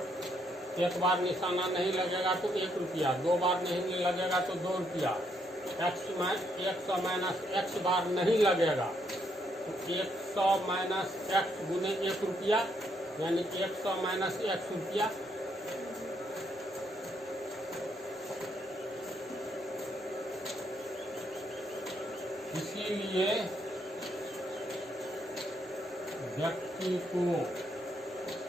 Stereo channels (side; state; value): both; normal; correlation 0.74